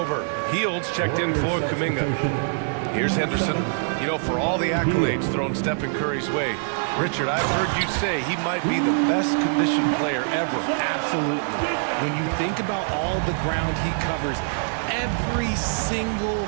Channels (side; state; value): left; silent; 63 dB below the other